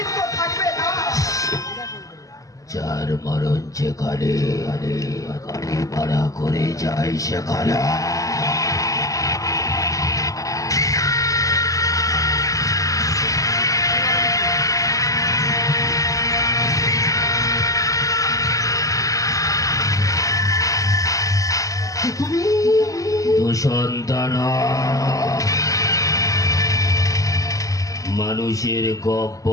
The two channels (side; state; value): right; late; 0.16 ms